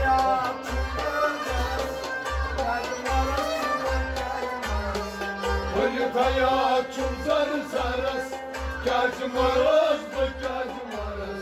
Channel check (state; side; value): identical; both; correlation 1.00